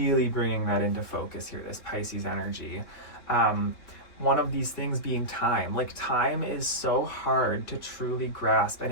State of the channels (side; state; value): right; late; 3.2 ms